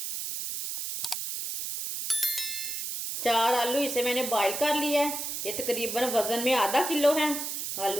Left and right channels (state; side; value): noise; right; hiss, 4 dB below the sound